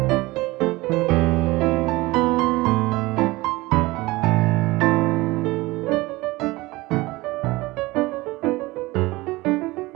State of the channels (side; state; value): left; quieter; 20.9 dB